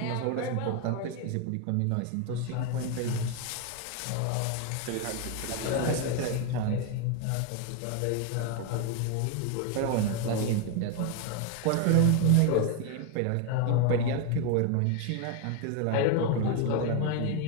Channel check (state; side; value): different; both; correlation 0.01